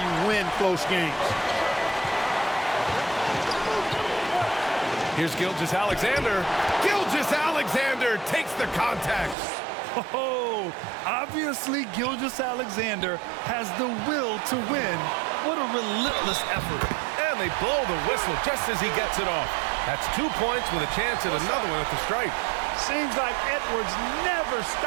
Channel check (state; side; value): drops out; left; at 9.3 s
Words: win close games. Here's Gilgeous-Alexander. Gilgeous-Alexander takes the contact. Oh, obviously Gilgeous-Alexander has the will to win. What a relentless effort. And they blow the whistle just as he gets it off. That's 2 points with a chance at another one at the stripe. Seems like Edwards never